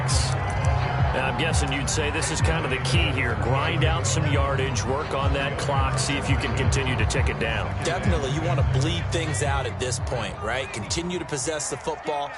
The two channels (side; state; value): both; identical; correlation 1.00